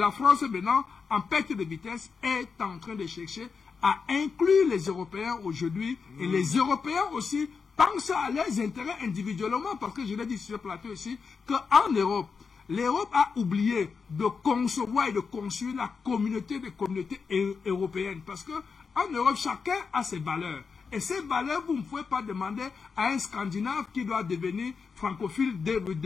France maintenant, en perte de vitesse, est en train de chercher à inclure les Européens aujourd'hui. Et les Européens aussi pensent à leurs intérêts individuellement, parce que je l'ai dit sur le plateau aussi, qu'en Europe, l'Europe a oublié de concevoir et de construire la communauté des communautés européennes. Parce qu'en Europe, chacun a ses valeurs. Et ces valeurs, vous ne pouvez pas demander à un Scandinave qui doit devenir francophile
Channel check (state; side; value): quieter; right; 5.4 dB